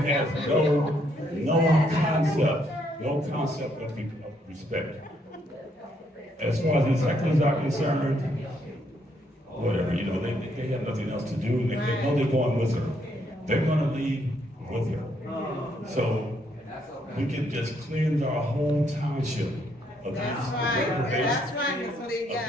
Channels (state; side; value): normal; both; correlation 0.72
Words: no concept of respect. As far as the hecklers are concerned, whatever, they have nothing else to do. They know they're going with her. They're going to leave with her. So we can just cleanse our whole township of